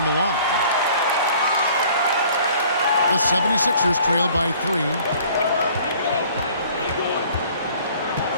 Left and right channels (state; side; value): inverted; both; correlation -0.53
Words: the line. The 76ers trail by 3.